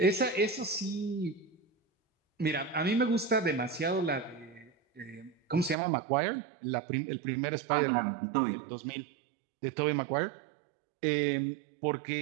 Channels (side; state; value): left; drops out; at 5.8 s